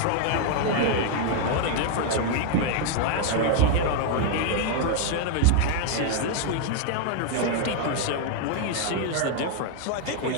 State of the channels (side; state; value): both; different; correlation 0.00